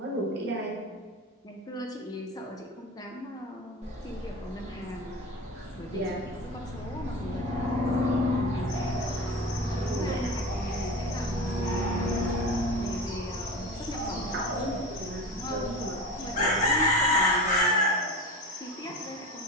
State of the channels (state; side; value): normal; both; correlation 0.29